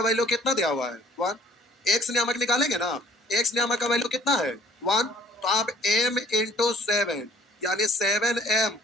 वैल्यू कितना दिया हुआ है? 1। एक्स नियामक निकालेंगे ना, एक्स नियामक का वैल्यू कितना है? 1। तो आप m इंटू 7 यानी 7m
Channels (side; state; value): both; normal; correlation 0.55